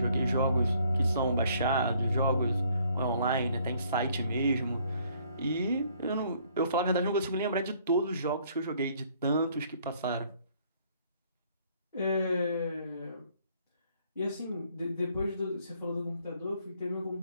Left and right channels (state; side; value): inverted; both; correlation -0.63